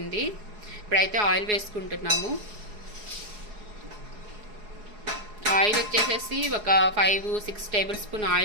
ఇప్పుడైతే ఆయిల్ వేసుకుంటున్నాము. ఆయిల్ వచ్చేసేసి ఒక 5-6 టేబుల్ స్పూన్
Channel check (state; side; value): late; left; 4.8 ms